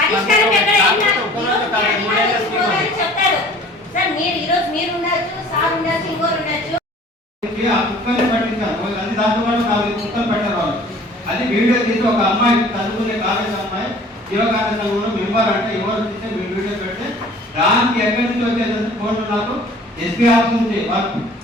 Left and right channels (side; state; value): both; normal; correlation 0.49